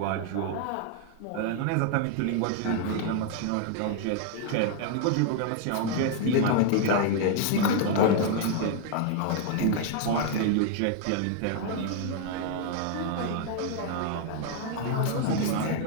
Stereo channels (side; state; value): both; different; correlation 0.00